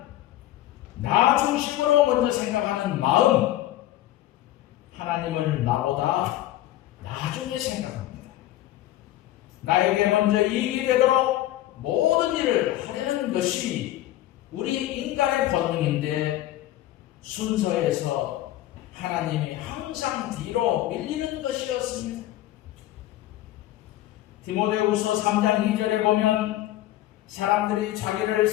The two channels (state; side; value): quieter; right; 14.4 dB